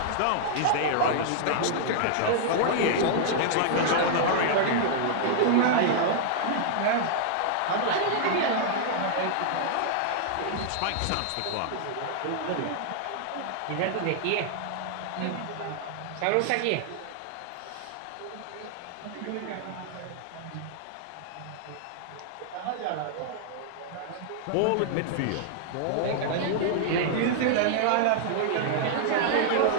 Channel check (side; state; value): both; different; correlation -0.01